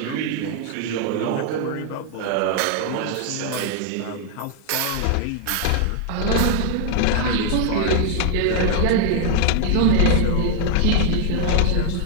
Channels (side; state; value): both; different; correlation 0.00